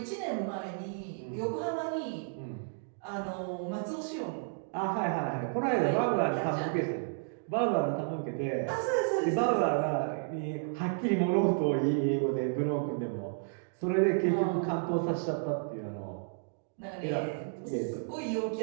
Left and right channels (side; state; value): left; silent; digital silence